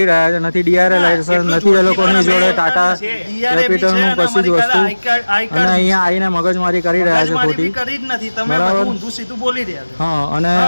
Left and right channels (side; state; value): both; inverted; correlation -1.00